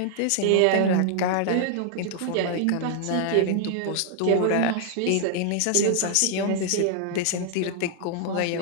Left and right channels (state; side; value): different; both; correlation -0.01